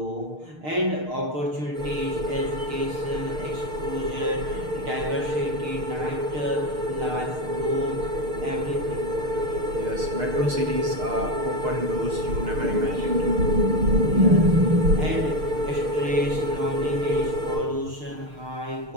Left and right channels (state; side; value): late; left; 6.6 ms